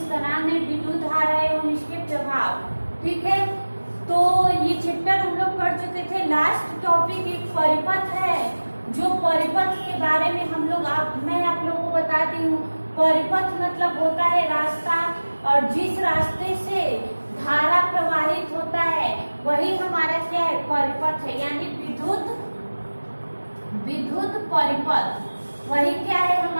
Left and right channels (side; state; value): both; inverted; correlation -1.00